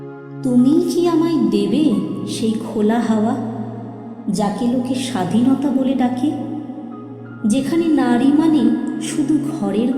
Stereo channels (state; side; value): identical; both; correlation 1.00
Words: তুমি কি আমায় দেবে সেই খোলা হাওয়া, যাকে লোকে স্বাধীনতা বলে ডাকে, যেখানে নারী মানে শুধু ঘরের